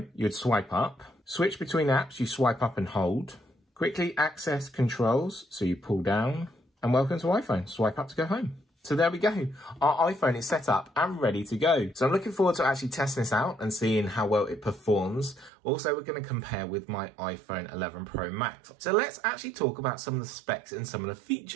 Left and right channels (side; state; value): left; drops out; at 15.5 s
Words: you'd swipe up. Switch between apps, you swipe up and hold. Quickly access controls, so you pull down. And welcome to iPhone. Swipe up to go home. So there we go. Our iPhone is set up and ready to go. So I'm looking forward to actually testing this out and seeing how well it performs. Also, we're going to compare with my iPhone 11 Pro Max. So let's actually talk about some of the specs and some of the